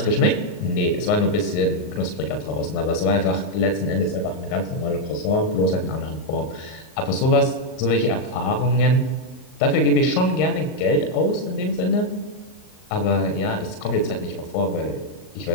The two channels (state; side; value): late; right; 39 ms